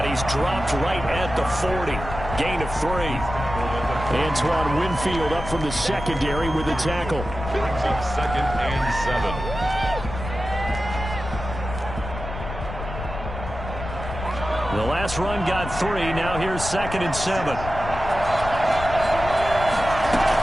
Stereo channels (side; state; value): left; noise; rumble, 8 dB below the sound